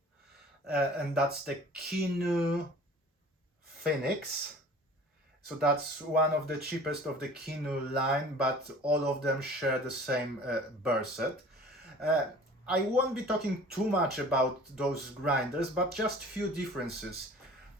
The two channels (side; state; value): both; normal; correlation 0.46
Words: and that's the Kinu Phoenix. So that's one of the cheapest of the Kinu line, but all of them share the same burr set. Uh, I won't be talking too much about those grinders, but just few differences.